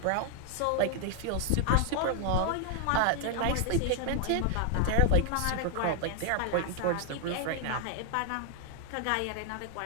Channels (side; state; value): both; different; correlation 0.00